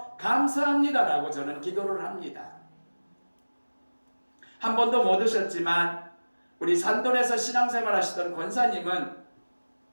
감사합니다라고 저는 기도를 합니다. 한 번도 못 오셨지만 우리 산돈에서 신앙생활 하시던 권사님은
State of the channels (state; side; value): inverted; both; correlation -1.00